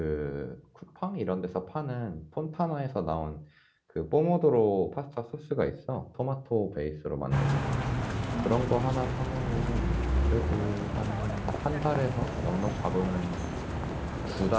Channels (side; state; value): both; identical; correlation 1.00